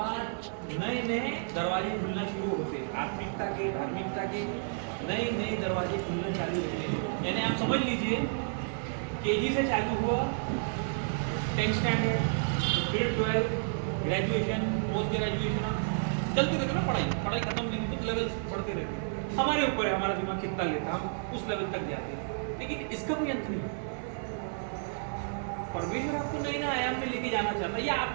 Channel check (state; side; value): silent; left; 57 dB below the other